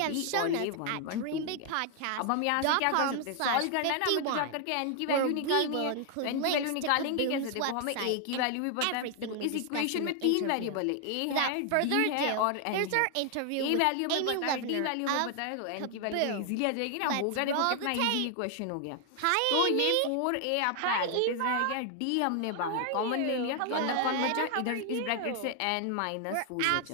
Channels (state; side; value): different; both; correlation 0.00